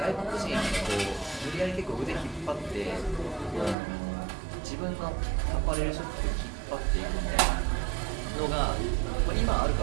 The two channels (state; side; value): drops out; left; at 3.8 s